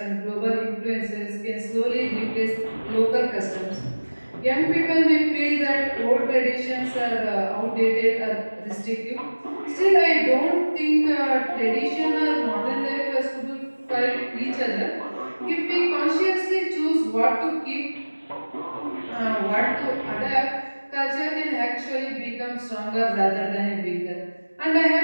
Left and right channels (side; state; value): both; inverted; correlation -1.00